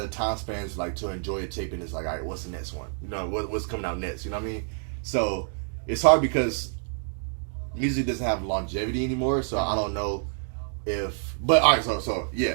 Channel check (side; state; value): left; silent; 60 dB below the other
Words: time spans like to enjoy a tape, and it's like, all right, what's the next one? You know, what's coming out next? You know what I mean? So it's hard because music doesn't have longevity anymore. So I don't know if. But all right, so yeah.